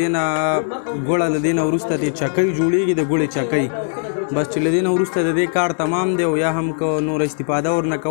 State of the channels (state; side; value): silent; right; 66 dB below the other